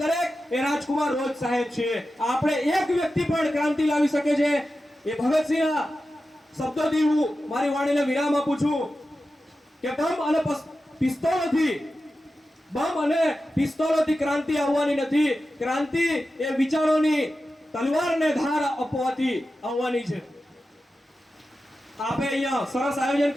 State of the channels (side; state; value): both; normal; correlation 0.92